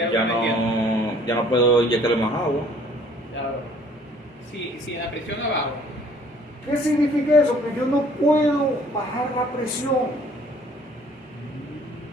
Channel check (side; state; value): both; normal; correlation 0.57